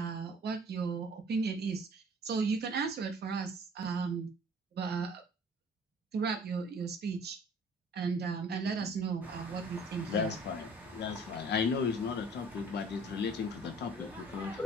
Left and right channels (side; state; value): both; normal; correlation 0.51